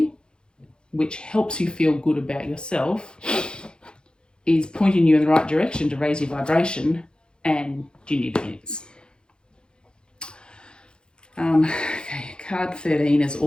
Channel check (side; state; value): right; late; 0.049 ms